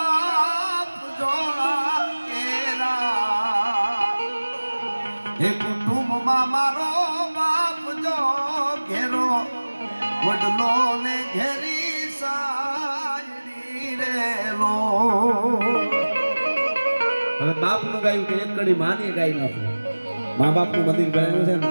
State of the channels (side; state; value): both; inverted; correlation -1.00